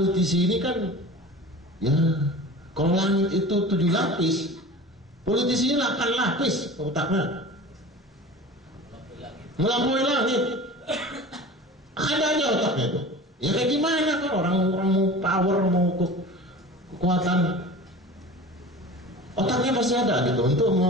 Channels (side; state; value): both; normal; correlation 0.37